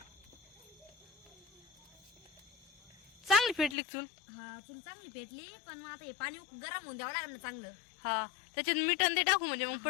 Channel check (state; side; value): drops out; right; at 3.8 s